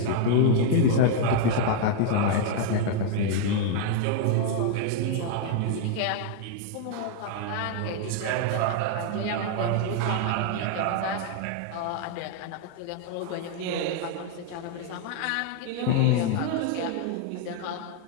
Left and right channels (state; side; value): different; both; correlation 0.00